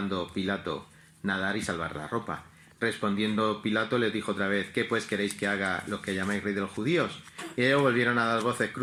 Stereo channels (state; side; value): identical; both; correlation 1.00